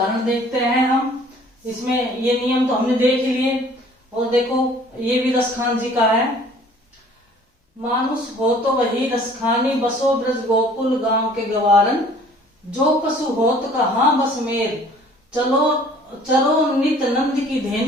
देखते हैं हम। इसमें ये नियम तो हमने देख लिए। और देखो ये भी रसखान जी का है। मानुष हो तो वही रसखानी, बसो ब्रज गोकुल गांव के गवारन। जो पशु होत कहाँ बस मेर, चलो चरो नित नंद की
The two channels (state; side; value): normal; both; correlation 0.53